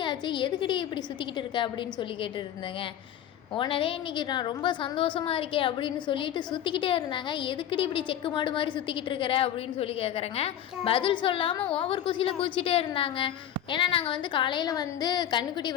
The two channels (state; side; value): quieter; right; 10.7 dB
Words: ஆச்சு, எதுக்கடி இப்படி சுற்றிக்கிட்டு இருக்க அப்படின்னு சொல்லி கேட்டுட்டு இருந்தேங்க. ஓனரே இன்றைக்கி நான் ரொம்ப சந்தோஷமாக இருக்கேன் அப்படின்னு சொல்லிட்டு சுற்றிக்கிட்டே இருந்தாங்க. எதுக்கடி இப்படி செக்கு மாடு மாதிரி சுற்றிக்கிட்டு இருக்கிற அப்படின்னு சொல்லி கேட்குறேங்க. பதில் சொல்லாமல் ஓவர் குசியில் குதிச்சிட்டே இருந்தாங்க. ஏன்னா நாங்கள் வந்து காலையில் வந்து கண்ணுக்குட்டி